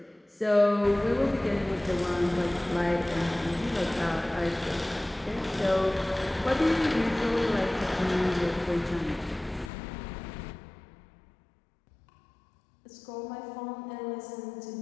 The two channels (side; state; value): right; drops out; at 9.7 s